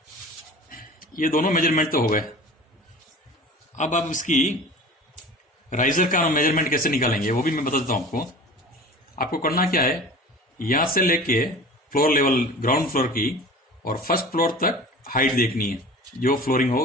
ये दोनों मेजरमेंट तो हो गए। अब आप इसकी राइजर का मेजरमेंट कैसे निकालेंगे वो भी मैं बता देता हूं आपको। आपको करना क्या है, यहां से लेके फ्लोर लेवल, ग्राउंड फ्लोर की और फर्स्ट फ्लोर तक हाइट देखनी है, जो फ्लोरिंग हो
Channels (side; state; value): both; normal; correlation 0.39